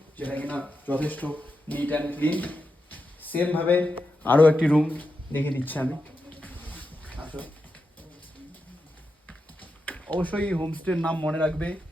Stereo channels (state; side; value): normal; both; correlation 0.88